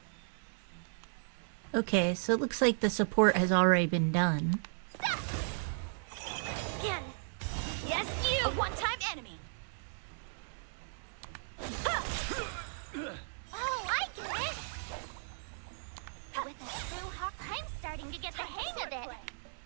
Okay, so it looks like the support has already been done. Again. Yes, you. A one-time enemy. Oh, I get it. With a true hawk, I'm starting to get the hang of it.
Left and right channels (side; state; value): left; silent; digital silence